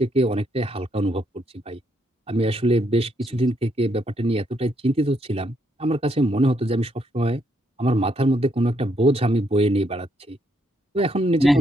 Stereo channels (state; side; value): normal; both; correlation 0.75